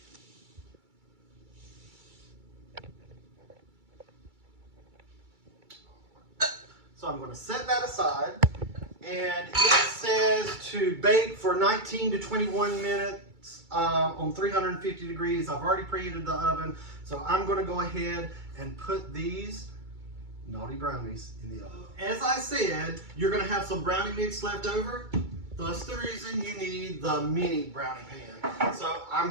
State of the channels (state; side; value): late; left; 2.3 ms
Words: So I'm going to set that aside, and it says to bake for 19 to 21 minutes on 350 degrees. I've already preheated the oven, so I'm going to go ahead and put these Naughty Brownies in the oven. As I said, you're going to have some brownie mix left over. That's the reason you need the mini brownie pan. So I'm